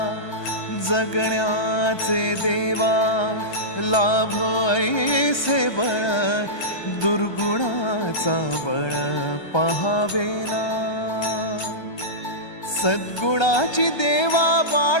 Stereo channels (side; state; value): right; late; 1.3 ms